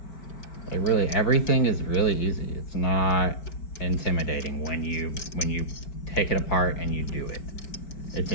Everything is really easy. It's not intimidating when you take it apart and you do it. It's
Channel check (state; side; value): late; right; 5.1 ms